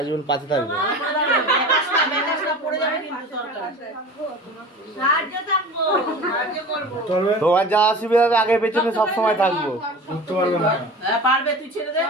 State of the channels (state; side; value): normal; both; correlation 0.36